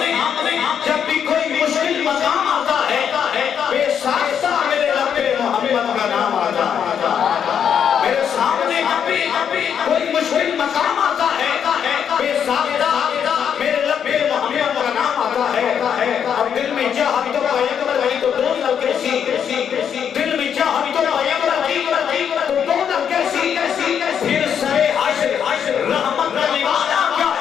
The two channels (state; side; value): quieter; right; 8.1 dB